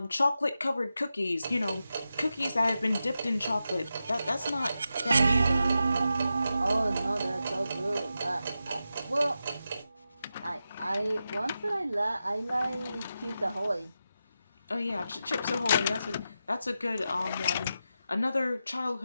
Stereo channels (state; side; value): inverted; both; correlation -0.90